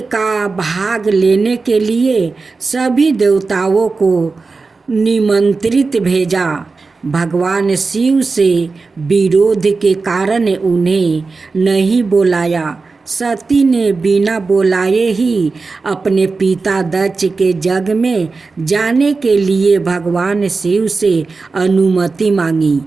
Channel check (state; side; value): quieter; left; 4.1 dB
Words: का भाग लेने के लिए सभी देवताओं को निमंत्रित भेजा। भगवान शिव से विरोध के कारण उन्हें नहीं बुलाया। सती ने बिना बुलाए ही अपने पिता दक्ष के यज्ञ में जाने के लिए भगवान शिव से अनुमति मांगी।